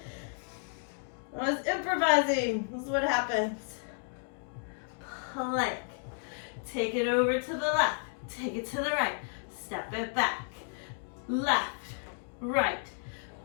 I was improvising. This is what happens. Plank. Take it over to the left. Take it to the right. Step it back. Left, right,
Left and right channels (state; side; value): silent; right; 56 dB below the other